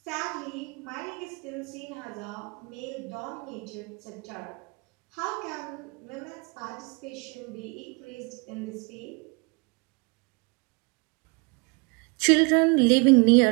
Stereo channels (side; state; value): left; quieter; 29.4 dB